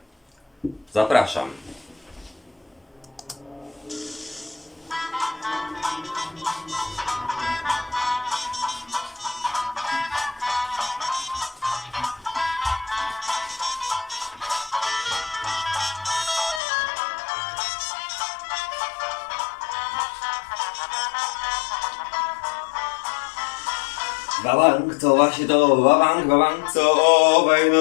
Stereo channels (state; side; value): drops out; right; at 16.6 s